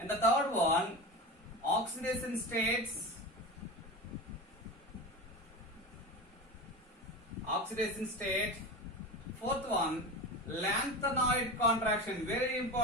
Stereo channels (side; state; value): both; normal; correlation 0.26